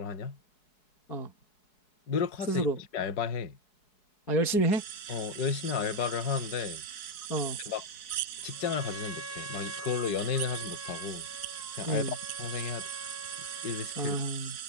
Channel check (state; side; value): late; right; 4.7 ms